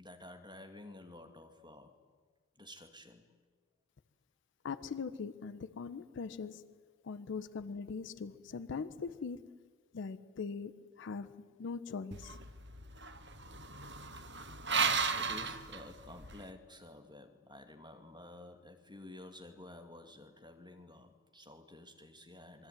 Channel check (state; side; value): normal; both; correlation 0.03